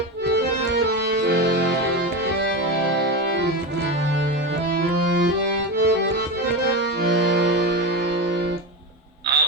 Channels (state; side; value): normal; both; correlation 0.19